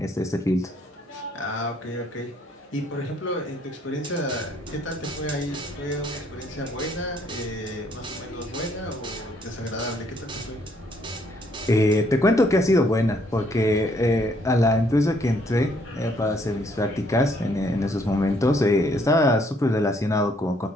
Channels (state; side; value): normal; both; correlation 0.67